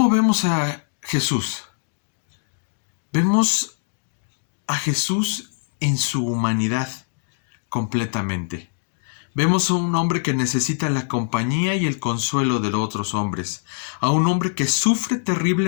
vemos a Jesús? Vemos a Jesús en su humanidad completamente. Vemos a un hombre que necesita la compañía y el consuelo de los otros hombres, a un hombre que sufre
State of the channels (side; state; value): right; silent; digital silence